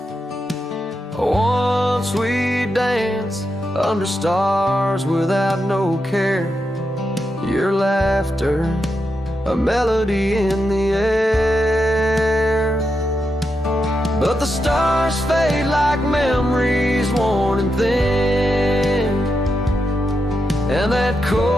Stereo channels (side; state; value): both; normal; correlation 0.86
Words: Once we danced under stars without no care, your laughter, a melody in the air. But the stars fade like memories worn and thin, and that